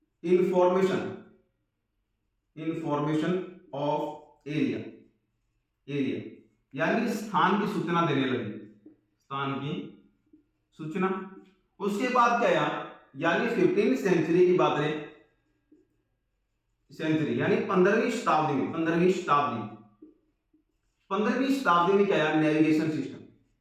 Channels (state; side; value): identical; both; correlation 1.00